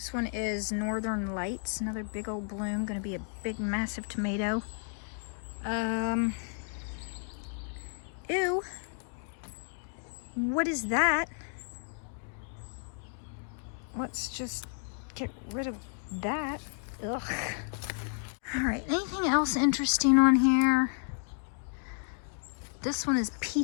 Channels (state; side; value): silent; right; 56 dB below the other